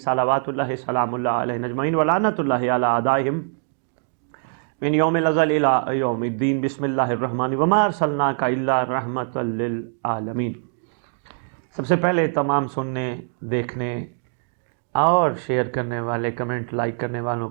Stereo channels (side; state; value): left; silent; digital silence